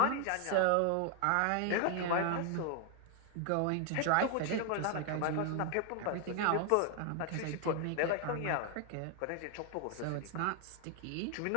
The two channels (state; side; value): different; both; correlation 0.00